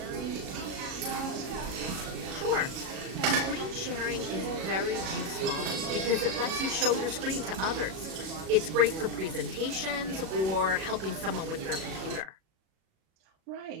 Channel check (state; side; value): late; left; 37 ms